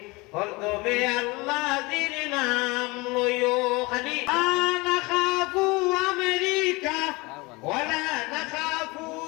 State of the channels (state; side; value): quieter; right; 24.4 dB